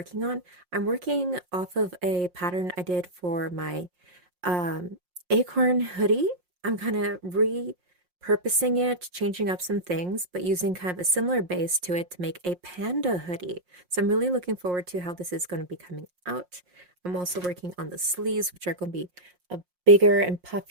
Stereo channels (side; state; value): left; late; 5.6 ms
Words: on. I'm working off of a pattern I did for my um, acorn hoodie. I'm kind of repurposing it, changing up some things, but using kind of a similar base to it to make a panda hoodie. So I'm really looking forward to how this is going to be coming out. I'm also working on the sleeves, which are going to be a bigger and